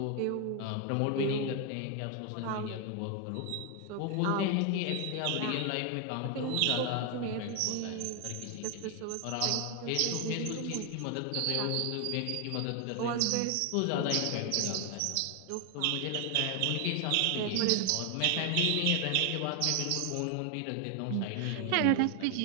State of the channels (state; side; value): different; both; correlation 0.00